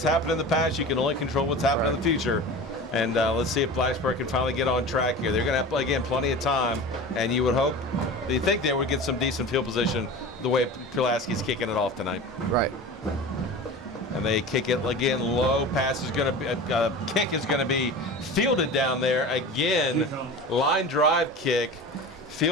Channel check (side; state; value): both; normal; correlation 0.33